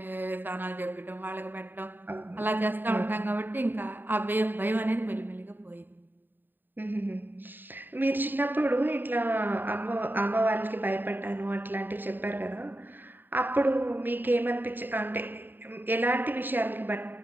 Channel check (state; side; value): late; left; 0.092 ms